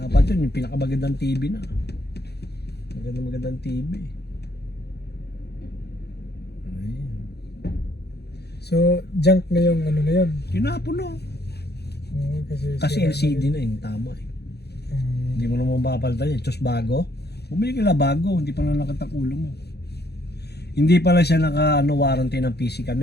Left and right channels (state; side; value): late; right; 0.48 ms